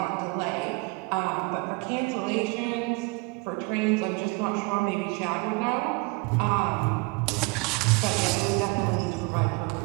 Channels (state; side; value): quieter; left; 27.3 dB